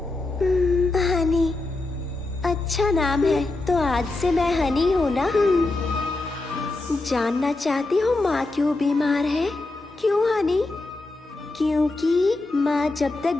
हनी, अच्छा नाम है। तो आज से मैं हनी हूँ ना? जानना चाहती हो माँ क्यों बीमार है? क्यों हनी? क्योंकि माँ जब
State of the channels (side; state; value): right; quieter; 3.0 dB